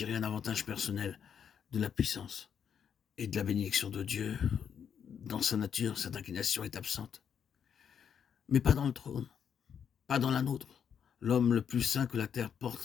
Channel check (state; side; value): quieter; right; 7.8 dB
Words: un avantage personnel de la puissance et de la bénédiction de Dieu. Dans sa nature, cette inclination est absente. Mais pas dans le trône, pas dans la nôtre. L'homme le plus saint que la terre